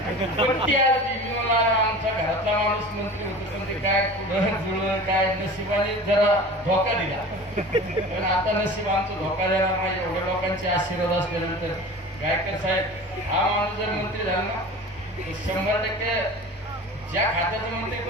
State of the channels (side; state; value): both; normal; correlation 0.37